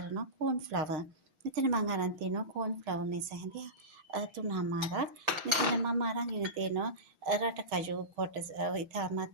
කෝන් ෆ්ලවර්. මෙතන මම අරන් තියෙනවා කෝන් ෆ්ලවර් මේස හැඳි 3මාරක්. මෙතන මම අරන්ගෙන තියෙනවා රටකජු කොටස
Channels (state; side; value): late; left; 6.5 ms